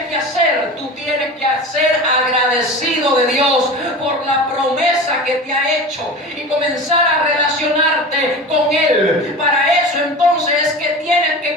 que hacer? Tú tienes que ser agradecido de Dios por la promesa que te ha hecho y comenzar a relacionarte con Él. Para eso entonces es que tienes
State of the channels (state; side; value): normal; both; correlation 0.32